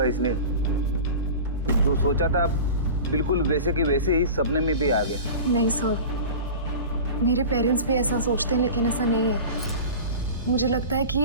इसने। जो सोचा था बिल्कुल वैसे के वैसे ही सपने में भी आ गया। नहीं सर, मेरे पेरेंट्स भी ऐसा सोचते हैं लेकिन ऐसा नहीं है। मुझे लगता है कि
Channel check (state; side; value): inverted; both; correlation -0.34